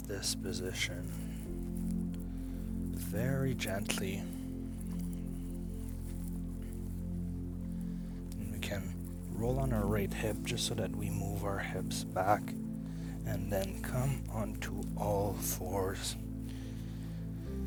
this position very gently. And we can roll on our right hip just so that we move our hips back, and then come onto all fours.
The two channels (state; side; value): identical; both; correlation 1.00